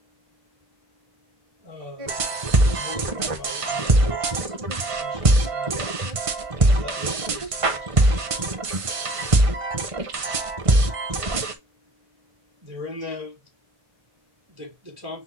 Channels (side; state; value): left; late; 1.5 ms